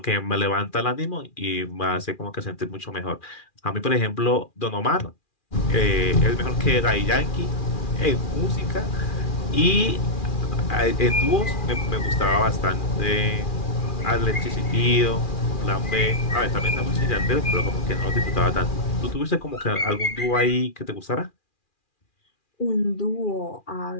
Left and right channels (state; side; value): late; right; 2.4 ms